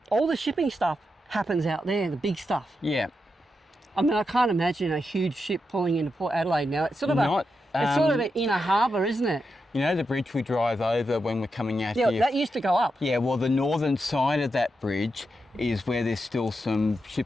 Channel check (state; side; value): normal; both; correlation 0.86